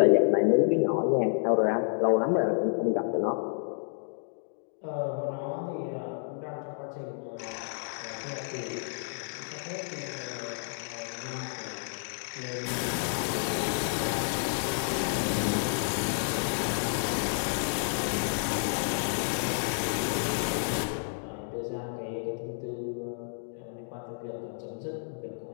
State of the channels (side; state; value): right; silent; digital silence